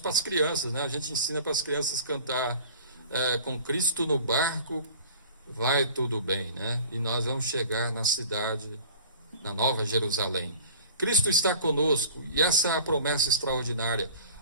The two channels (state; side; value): inverted; both; correlation -0.45